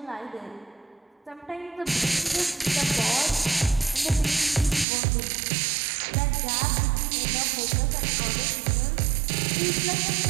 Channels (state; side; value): drops out; left; at 4.9 s